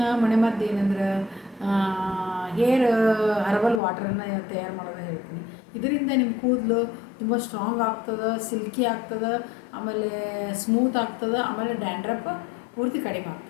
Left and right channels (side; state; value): right; drops out; at 3.8 s